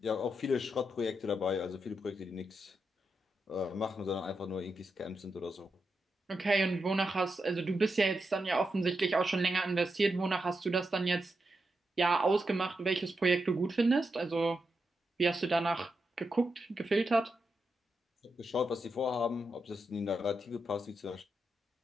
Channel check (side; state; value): both; normal; correlation 0.85